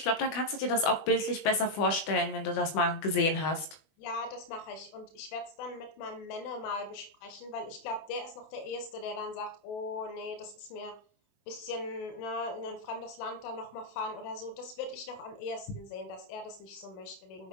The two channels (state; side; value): late; right; 20 ms